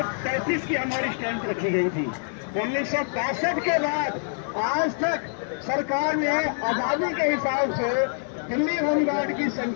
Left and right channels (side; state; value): right; silent; digital silence